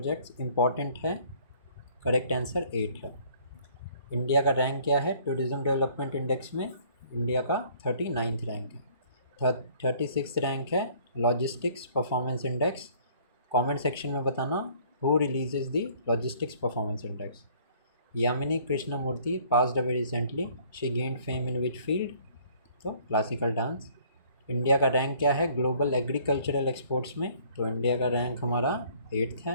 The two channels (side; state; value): both; inverted; correlation -0.58